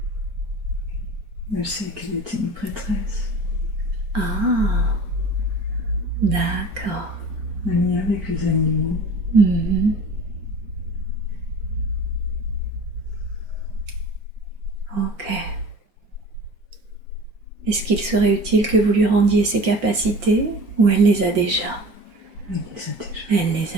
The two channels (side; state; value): left; late; 4.4 ms